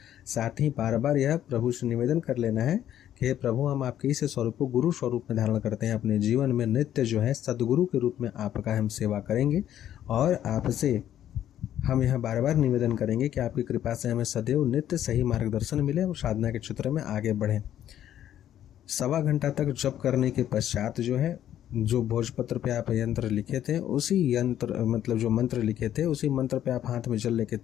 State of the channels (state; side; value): quieter; right; 11.2 dB